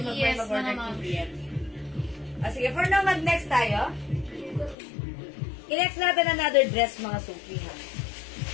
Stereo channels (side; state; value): right; drops out; at 4.8 s